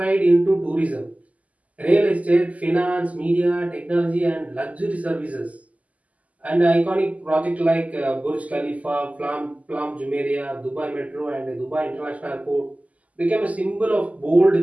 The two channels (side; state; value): left; late; 0.073 ms